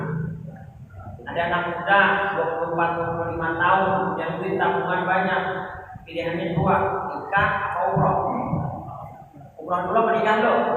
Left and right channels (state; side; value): identical; both; correlation 1.00